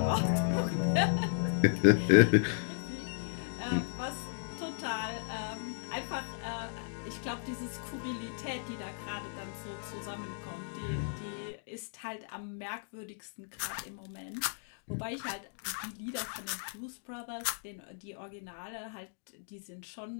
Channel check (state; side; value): silent; right; digital silence